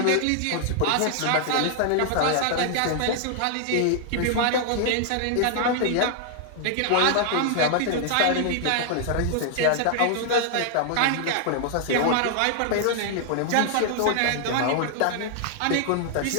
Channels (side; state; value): both; different; correlation 0.00